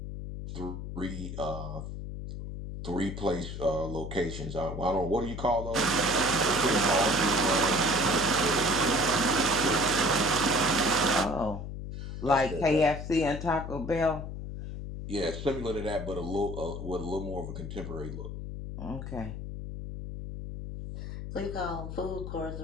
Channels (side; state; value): left; noise; hum, 7 dB below the sound